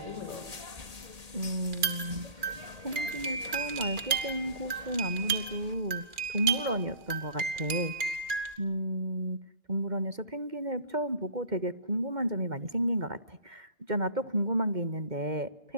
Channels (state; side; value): late; left; 2.4 ms